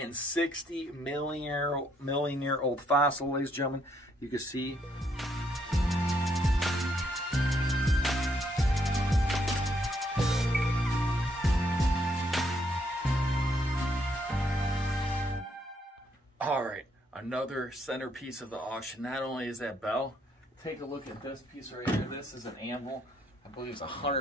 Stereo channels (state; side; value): normal; both; correlation 0.72